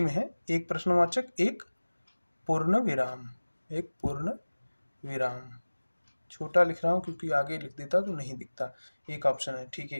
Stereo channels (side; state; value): both; inverted; correlation -1.00